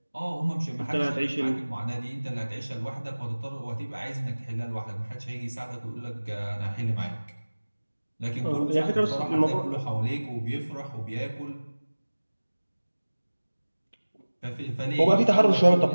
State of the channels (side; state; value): both; inverted; correlation -1.00